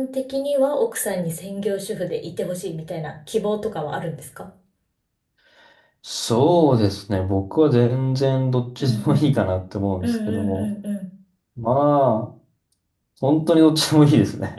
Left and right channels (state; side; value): identical; both; correlation 1.00